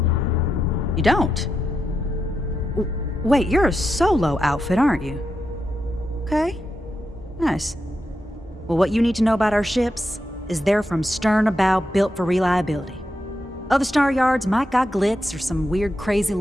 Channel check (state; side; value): normal; both; correlation 0.86